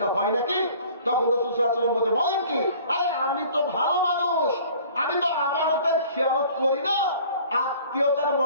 হয় নাকি? তখন রাসূল সাল্লাল্লাহু আলাইহি ওয়াসাল্লাম বলছে, বলেন কি? আরে আমি তো ভালো মানুষ, আমি তো আমানতের খেয়ানত করি না, আত্মীয়তার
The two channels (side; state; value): both; inverted; correlation -0.50